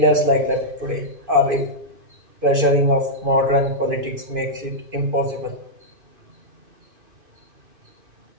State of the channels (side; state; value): left; late; 2.5 ms